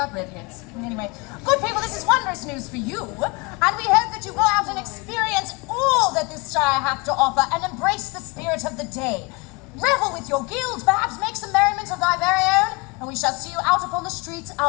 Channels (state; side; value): quieter; right; 26.8 dB